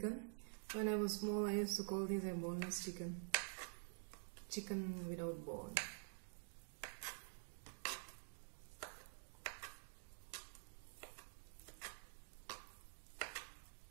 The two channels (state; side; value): silent; left; digital silence